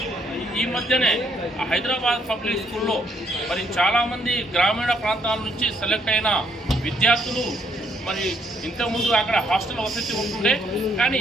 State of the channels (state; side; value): normal; both; correlation 0.70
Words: ఈ మధ్యనే హైదరాబాద్ పబ్లిక్ స్కూల్లో మరి చాలామంది గ్రామీణ ప్రాంతాల నుంచి సెలెక్ట్ అయిన విద్యార్థులు, మరి ఇంతకుముందు అక్కడ హాస్టల్ వసతి ఉంటుండే,